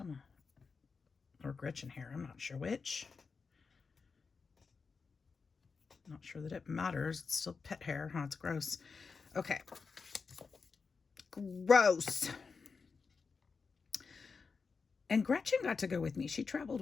or Gretchen hair. I'm not sure which. Not sure that it matters. It's still pet hair. Huh? It's gross. Okay. Gross. And Gretchen got to go with me. She traveled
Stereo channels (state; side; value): quieter; right; 5.0 dB